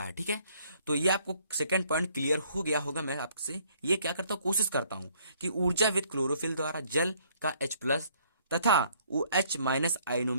है। ठीक है, तो ये आपको सेकंड पॉइंट क्लियर हो गया होगा। मैं आपसे ये क्या करता हूँ, कोशिश करता हूँ कि ऊर्जावित क्लोरोफिल द्वारा जल का H+ तथा OH- आयनों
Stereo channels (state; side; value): inverted; both; correlation -0.64